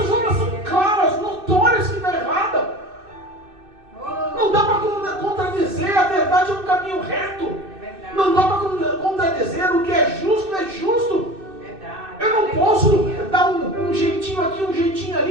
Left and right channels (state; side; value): late; left; 2.6 ms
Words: obras são claras, notórias que está errada. Não dá para contradizer, a verdade é um caminho reto. Não dá para contradizer, o que é justo. Eu não posso dar um jeitinho aqui, um jeitinho